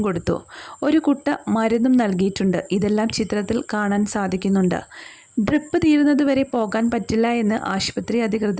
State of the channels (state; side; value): identical; both; correlation 1.00